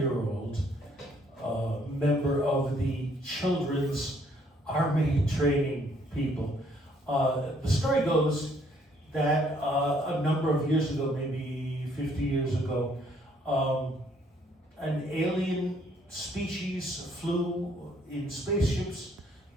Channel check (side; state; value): both; normal; correlation 0.66